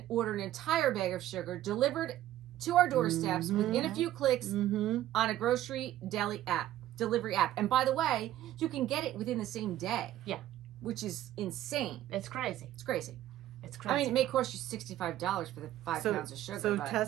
order an entire bag of sugar delivered to our doorsteps within a few clicks Mm-hmm. on a grocery delivery app. And by the way, you can get it within the same day. Yeah. Which is insane. It's crazy. It's crazy. It's crazy. I mean, it may cost you $65 for the 5 pounds of sugar. So but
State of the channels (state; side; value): quieter; left; 13.4 dB